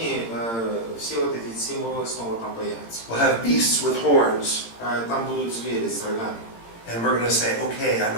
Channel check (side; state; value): right; late; 18 ms